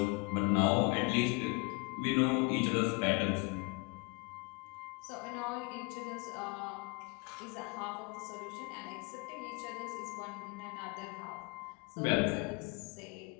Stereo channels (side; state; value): right; quieter; 28.4 dB